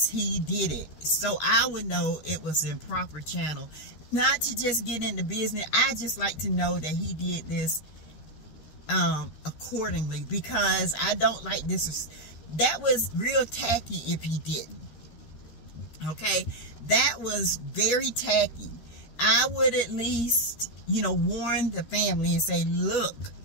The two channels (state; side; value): late; right; 13 ms